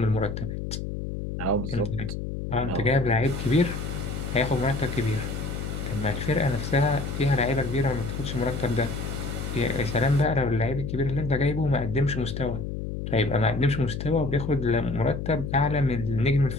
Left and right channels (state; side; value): noise; left; hum, 5 dB below the sound